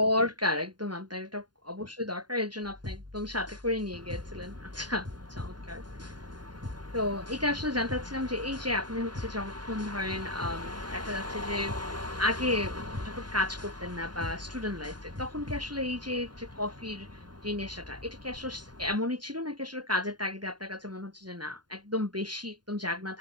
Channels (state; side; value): late; left; 0.70 ms